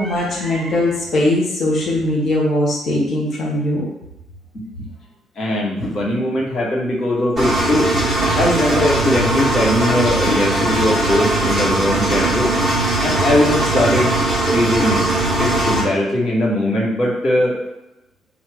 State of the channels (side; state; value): both; normal; correlation 0.71